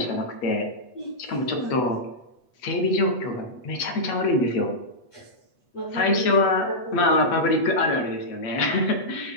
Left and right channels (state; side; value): late; right; 8.3 ms